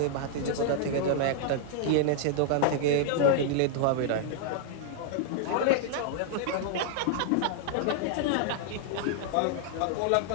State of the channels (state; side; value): different; both; correlation -0.01